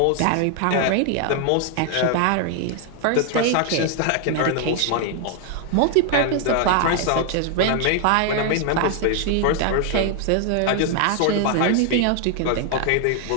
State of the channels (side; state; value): both; different; correlation 0.00